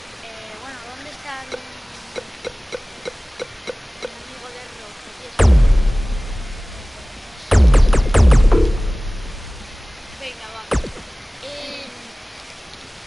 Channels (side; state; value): both; normal; correlation 0.98